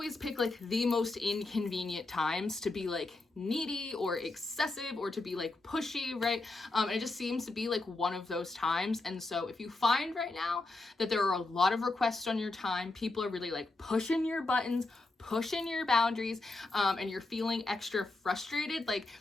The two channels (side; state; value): right; quieter; 3.1 dB